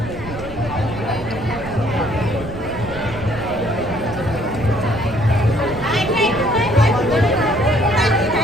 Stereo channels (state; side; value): noise; right; rumble, 12 dB below the sound